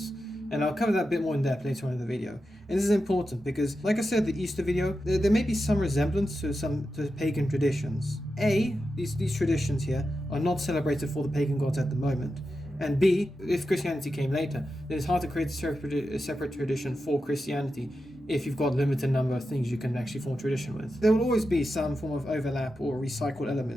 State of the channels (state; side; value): normal; both; correlation 0.90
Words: And I'll cover that a bit more in depth later on in the video. And this is important because, like I said, the Easter video, there may be some resemblance to pagan traditions. A, these traditions here are not celebrated for the pagan gods at the moment. And B, if Christianity came later, then it's hard to create a separate tradition for Christianity if you've got a limited number of things you can actually form tradition with. There will always be some form of overlap or recycled